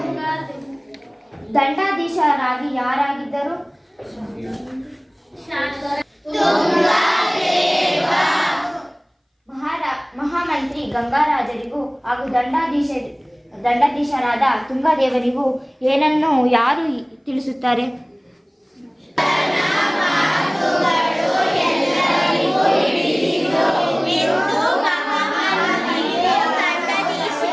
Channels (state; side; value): identical; both; correlation 1.00